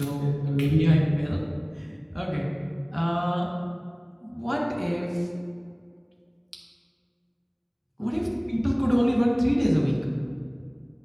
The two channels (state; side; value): identical; both; correlation 1.00